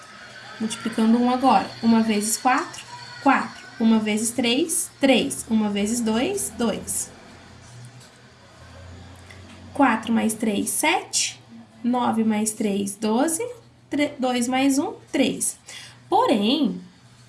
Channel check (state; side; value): identical; both; correlation 1.00